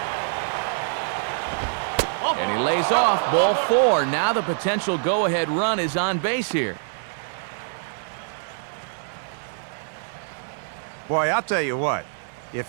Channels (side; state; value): left; silent; 62 dB below the other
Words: And he lays off, ball 4. Now the potential go-ahead run is on base here. Boy, I'll tell you what.